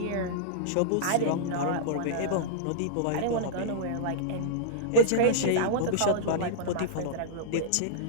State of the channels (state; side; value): different; both; correlation -0.02